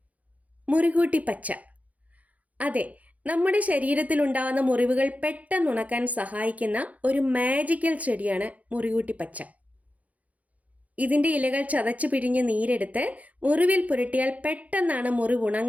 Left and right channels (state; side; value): late; left; 0.071 ms